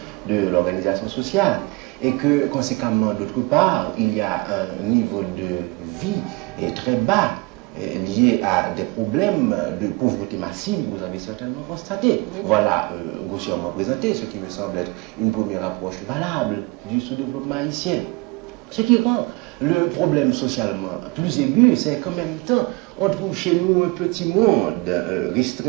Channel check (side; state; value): left; quieter; 25.8 dB